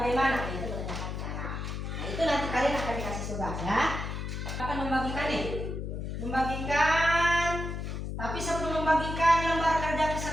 Itu menanyakan cara. Nah, itu nanti kalian akan dikasih tugas ya. Akan membagikan nih. Membagikan. Tapi sebelum membagikan lembar kerja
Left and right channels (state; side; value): noise; left; hum, 5 dB below the sound